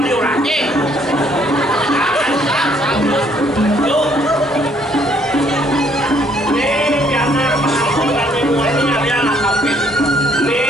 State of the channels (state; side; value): normal; both; correlation 0.65